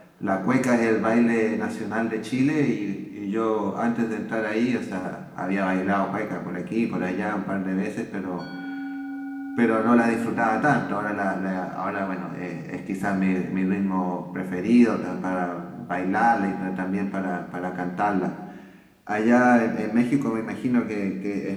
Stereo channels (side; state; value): both; identical; correlation 1.00